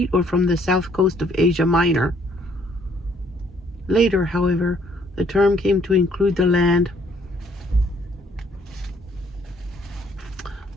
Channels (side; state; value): both; normal; correlation 0.64